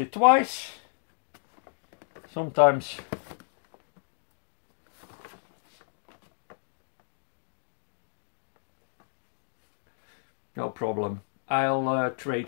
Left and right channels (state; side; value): silent; right; digital silence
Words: twice. Sometimes no problem. I'll